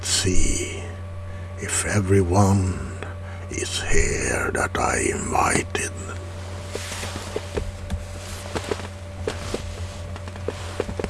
see if everyone is here that I invited.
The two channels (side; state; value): both; identical; correlation 1.00